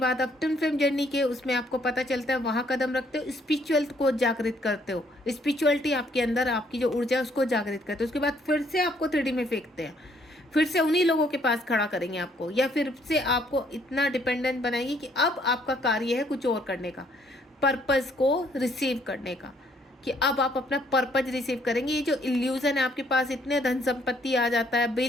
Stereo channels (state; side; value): normal; both; correlation 0.66